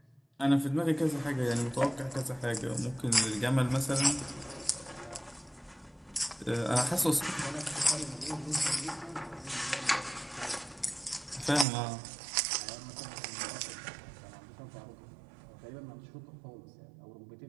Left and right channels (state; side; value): drops out; left; at 11.7 s